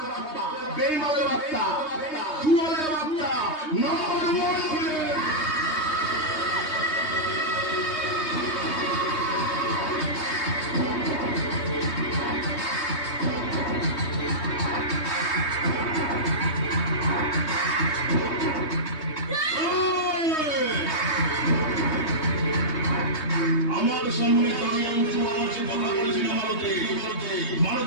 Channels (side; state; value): right; late; 3.2 ms